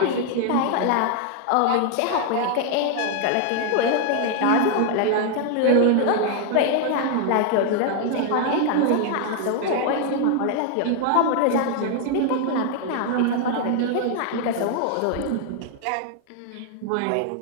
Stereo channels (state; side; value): different; both; correlation 0.00